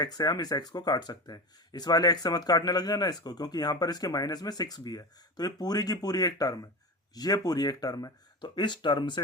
से हम इस x को काट सकते हैं। इस वाले x से मत काटने लग जाना इसको, क्योंकि यहाँ पर इसके माइनस में 6 भी है, तो ये पूरी की पूरी एक टर्म है, ये पूरी एक टर्म है। तो इस टर्म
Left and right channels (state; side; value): normal; both; correlation 0.25